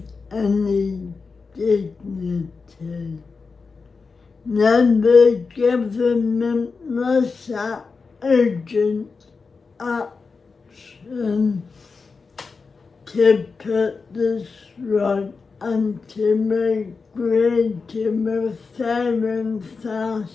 any dignity. Now the government must act urgent action to put this right and to agree to a fair and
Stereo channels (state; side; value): quieter; right; 4.6 dB